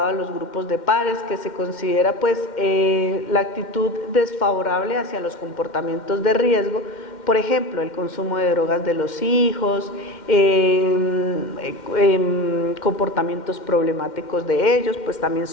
a los grupos de pares, que se considera pues la actitud desfavorable hacia los comportamientos de riesgo, por ejemplo, el consumo de drogas de los hijos, comportamientos problemáticos de ellos, pues también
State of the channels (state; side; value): late; right; 2.1 ms